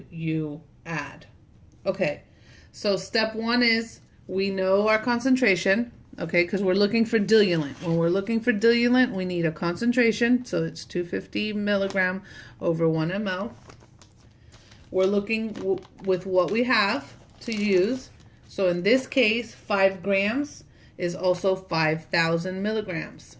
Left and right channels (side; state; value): both; identical; correlation 1.00